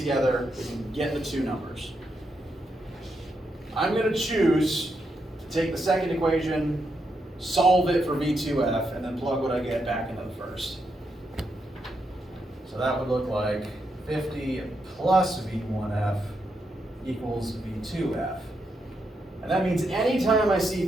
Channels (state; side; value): normal; both; correlation 0.82